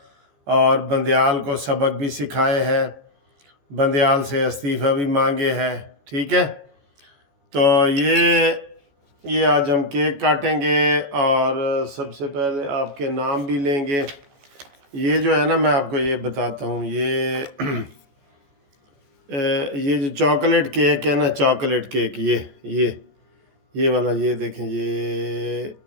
اور بندیال کو سبق بھی سکھائے ہے، بندیال سے استعفیٰ بھی مانگے ہے، ٹھیک ہے؟ تو یہ آج ہم کیک کاٹیں گے، اور سب سے پہلے آپ کے نام بھی لیں گے۔ یہ جو ہے نا، میں آپ کو یہ بتاتا ہوں، یہ جو چاکلیٹ کیک ہے نا، چاکلیٹ کیک یہ والا، یہ دیکھیں،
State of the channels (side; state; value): left; late; 14 ms